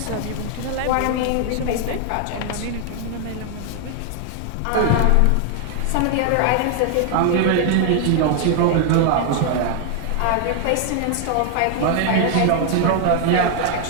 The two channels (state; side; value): different; both; correlation 0.00